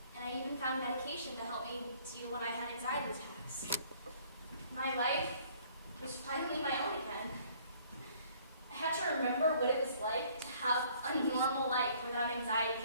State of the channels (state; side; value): inverted; both; correlation -0.58